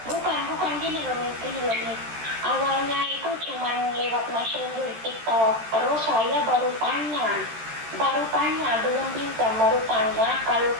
Bukan gini loh nih. Awalnya itu cuma lewat messenger TikTok. Terus saya baru tanya, belum pinjam, baru tanya kalau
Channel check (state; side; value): late; left; 13 ms